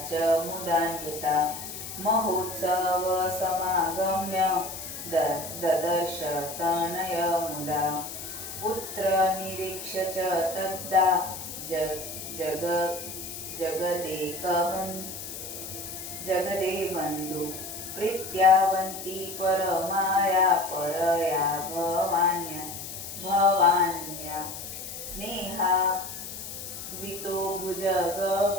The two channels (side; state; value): left; noise; hiss, 9 dB below the sound